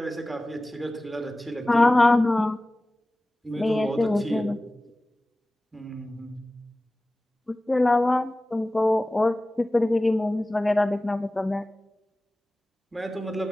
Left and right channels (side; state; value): both; normal; correlation 0.97